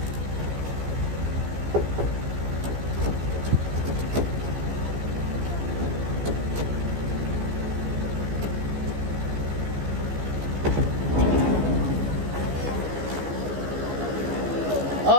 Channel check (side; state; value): left; late; 14 ms